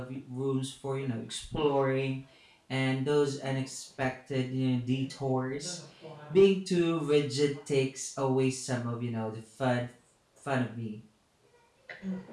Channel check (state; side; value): identical; both; correlation 1.00